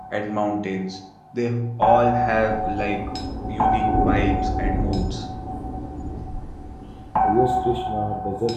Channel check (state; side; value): identical; both; correlation 1.00